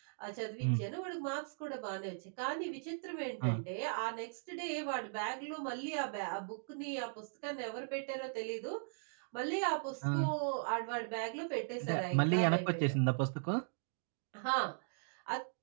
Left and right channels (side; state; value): left; silent; digital silence